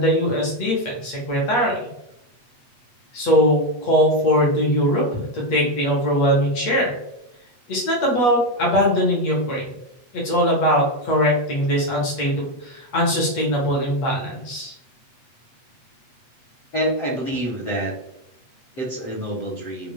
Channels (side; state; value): right; late; 8.3 ms